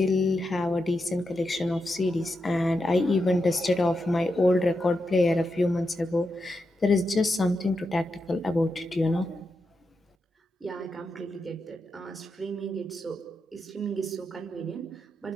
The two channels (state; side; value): normal; both; correlation 0.86